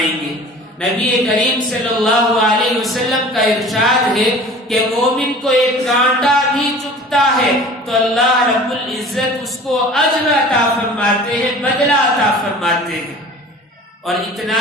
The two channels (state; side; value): normal; both; correlation 0.43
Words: گے۔ نبی کریم صلی اللہ علیہ وسلم کا ارشاد ہے کہ مومن کو ایک کانٹا بھی چبھتا ہے تو اللہ رب العزت اس کو اجر عطا فرماتے ہیں، بدلہ عطا فرماتے ہیں۔ اور